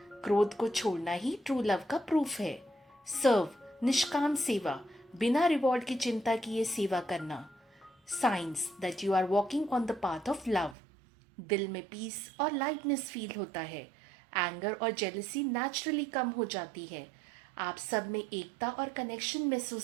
क्रोध को छोड़ना ही ट्रू लव का प्रूफ है। सर्व, निष्काम सेवा, बिना रिवॉर्ड की चिंता किए सेवा करना। Signs that you are walking on the path of love. दिल में पीस और लाइटनेस फील होता है। एंगर और जेलसी नेचुरली कम हो जाती है। आप सब में एकता और कनेक्शन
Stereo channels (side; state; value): left; drops out; at 10.8 s